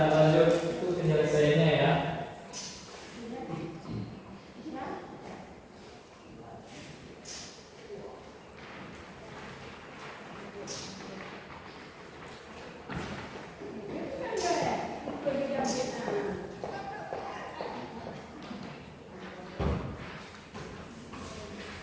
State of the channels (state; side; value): identical; both; correlation 1.00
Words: lanjut itu penyelesaiannya ya.